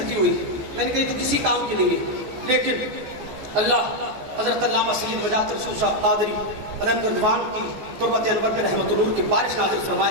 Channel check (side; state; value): left; late; 14 ms